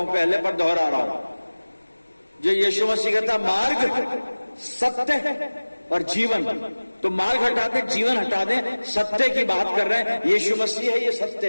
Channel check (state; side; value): inverted; both; correlation -1.00